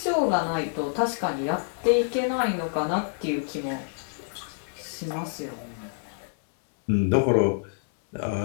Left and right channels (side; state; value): right; silent; digital silence